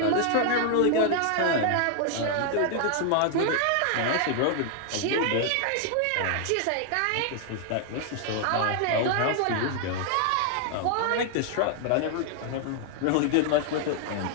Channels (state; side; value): different; both; correlation 0.00